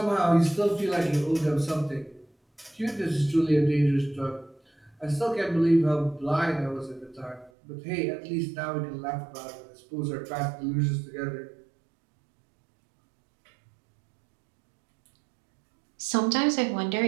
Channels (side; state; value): left; drops out; at 7.5 s